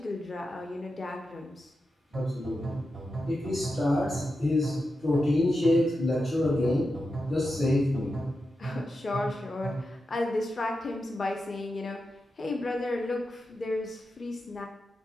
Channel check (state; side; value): normal; both; correlation 0.89